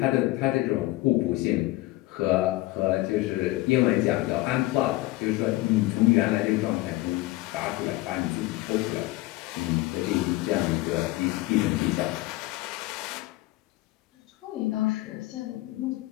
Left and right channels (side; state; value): right; quieter; 18.8 dB